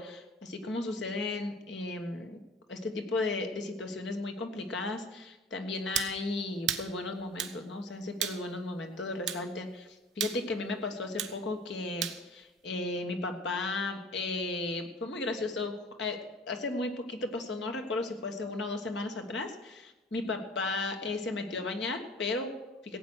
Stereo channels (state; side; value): normal; both; correlation 0.44